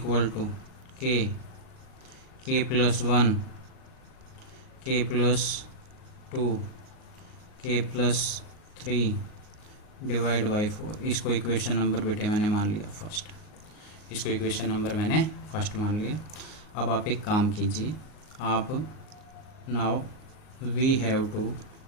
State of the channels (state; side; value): late; right; 38 ms